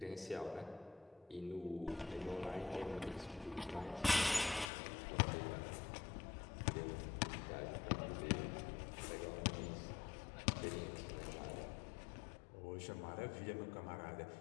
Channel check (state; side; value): drops out; right; at 4.7 s